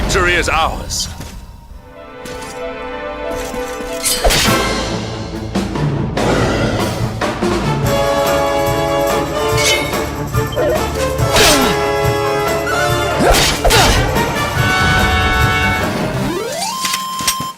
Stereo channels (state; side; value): identical; both; correlation 1.00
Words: Victory is ours.